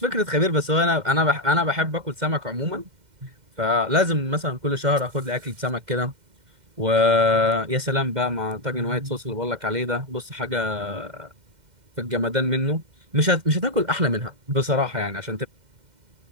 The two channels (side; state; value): left; late; 2.1 ms